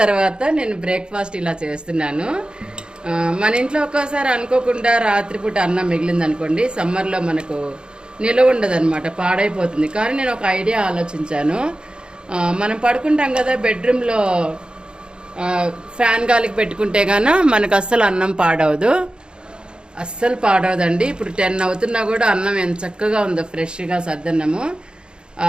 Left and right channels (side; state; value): left; late; 0.050 ms